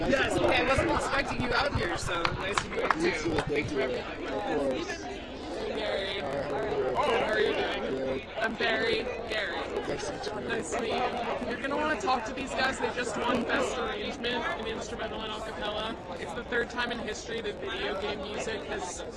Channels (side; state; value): both; identical; correlation 1.00